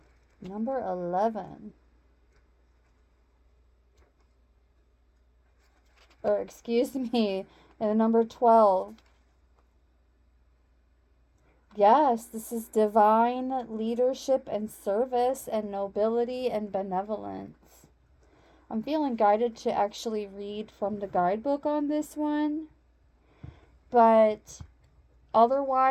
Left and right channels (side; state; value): both; identical; correlation 1.00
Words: Number 11. Or excuse me, and number 12. Yes, this is divine leadership and service and nobility and benevolence. I'm feeling guided to actually read from the guidebook on this one. But